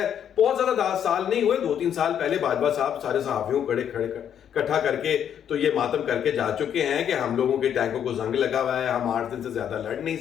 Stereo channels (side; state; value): right; quieter; 9.1 dB